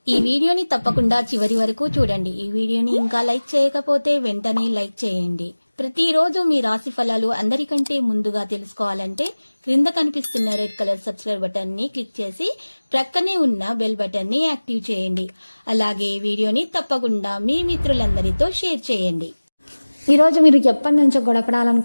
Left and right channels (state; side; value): inverted; both; correlation -1.00